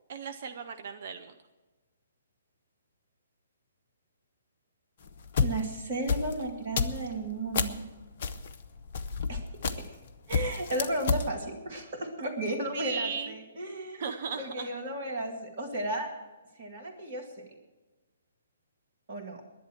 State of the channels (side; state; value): both; inverted; correlation -0.55